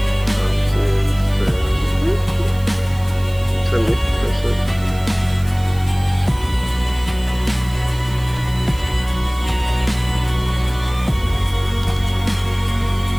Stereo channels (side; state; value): right; noise; hiss, 21 dB below the sound